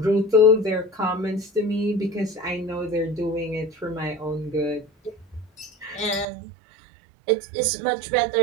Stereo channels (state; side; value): drops out; left; at 6.2 s